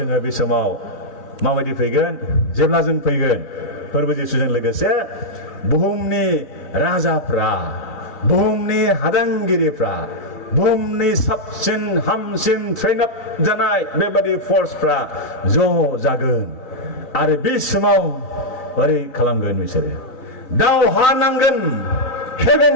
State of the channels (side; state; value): right; late; 3.9 ms